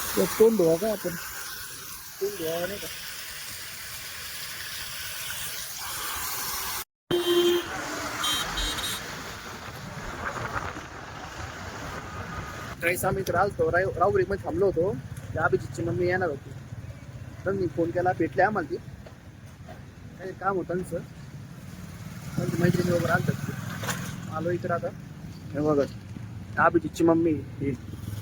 तोंड धुवा का आपण, तोंड धुवा नाही का? काही आम्ही इकडे आलतो, राहुरी मध्ये थांबलो होतो. त्या अभिजितची मम्मी येणार होती, तर मी फोन केला, भेटले आम्हाला. ती काही काम होतं त्यांचं, त्यांची मैत्रिणी वगैरे आणतात. आलो इकडे आता. हे बघा अभिजितची मम्मी ही.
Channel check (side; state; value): both; identical; correlation 1.00